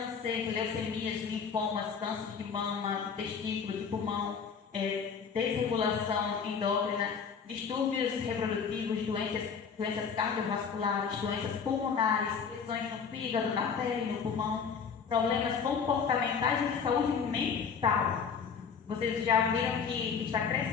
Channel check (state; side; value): quieter; right; 6.3 dB